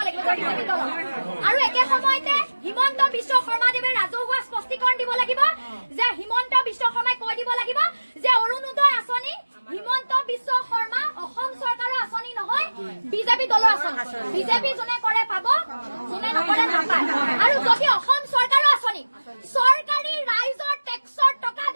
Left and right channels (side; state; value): both; inverted; correlation -1.00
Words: লাগিব বিজেপি দলক। আৰু একে সময়তে হিমন্ত বিশ্ব শৰ্মাদেৱে ৰাজহুৱা স্পষ্টীকৰণ দিব লাগিব যে হিমন্ত বিশ্ব শৰ্মাই কৈ দিব লাগিব যে অৰুণোদয় আঁচনি হিমন্ত বিশ্ব শৰ্মা অসম চৰকাৰৰ আঁচনি নহয়, বিজেপি দলৰ আঁচনি। বিজেপি যোনে কৰে পাব, যোনে নকৰে নাপায়। আৰু যদি অসম চৰকাৰৰ আঁচনি চৰকাৰী ৰাইজৰ টেক্সৰ টকা